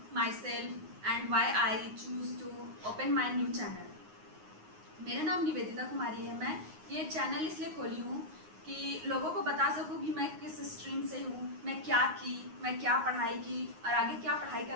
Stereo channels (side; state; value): left; late; 9.6 ms